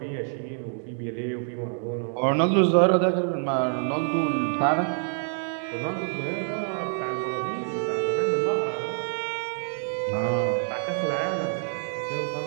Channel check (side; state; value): left; silent; 60 dB below the other